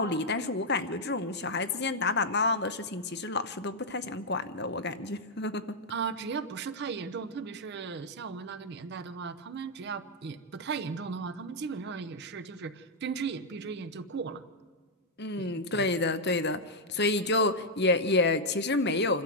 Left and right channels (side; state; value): both; normal; correlation -0.03